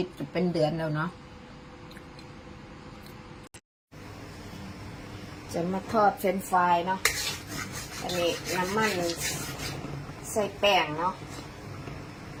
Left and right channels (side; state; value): both; identical; correlation 1.00